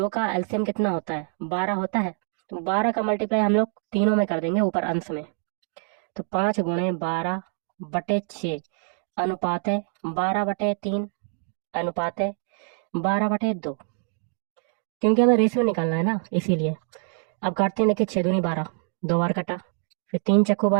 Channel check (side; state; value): left; silent; 56 dB below the other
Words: का एलसीएम कितना होता है? 12 होता है। तो 12 का मल्टीप्लाई हम लोग तीनों में कर देंगे ऊपर अंश में। तो 5 × 12/6 अनुपात है 12/3 अनुपात है 12/2, क्योंकि हमें रेशियो निकालना है ना, इसीलिए। अब काटते हैं, देखिए 6 दूनी 12, 2 बार कटा। फिर 3 चक्कू